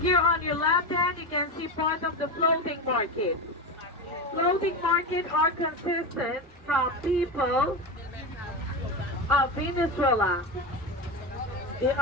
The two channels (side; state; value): both; normal; correlation 0.19